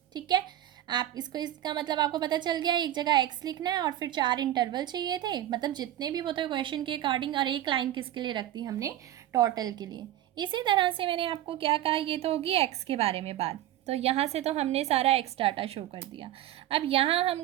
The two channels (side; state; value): left; quieter; 13.1 dB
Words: ठीक है, आप इसको, इसका मतलब आपको पता चल गया, एक जगह एक्स लिखना है और फिर 4 इंटरवल चाहिए थे, मतलब जितने भी होते क्वेश्चन के अकॉर्डिंग, और एक लाइन किसके लिए रख दी हमने, टोटल के लिए। इसी तरह से मैंने आपको क्या कहा, ये तो होगी एक्स के बारे में बात। तो यहाँ से तो हमने सारा एक्स डाटा शो कर दिया। अब यहाँ हम